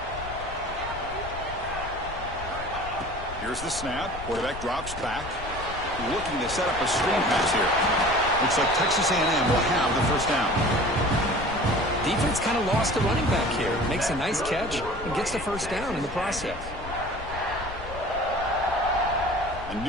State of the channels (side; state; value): left; noise; rumble, 11 dB below the sound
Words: Here's the snap. Quarterback drops back. Looking to set up a screen pass here. Looks like Texas A&M will have the first down. Defense kind of lost the running back here. Makes a nice catch and gets the first down in the process. A